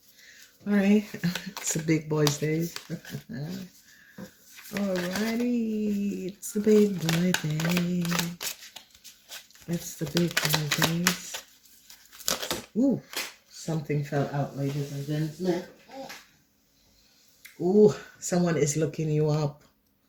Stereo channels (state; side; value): identical; both; correlation 1.00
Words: Alright, it's the big boys' day. Alrighty, it's the big boy day. It's the big boy days. Ooh, something fell out, ladies and gentlemen. Ooh, someone is looking you up.